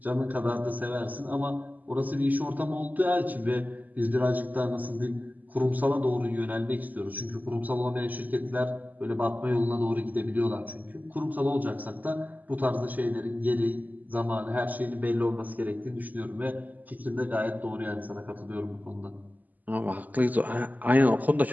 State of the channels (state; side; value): late; left; 0.081 ms